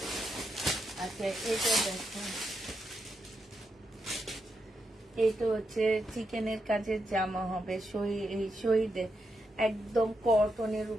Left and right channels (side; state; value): both; normal; correlation 0.83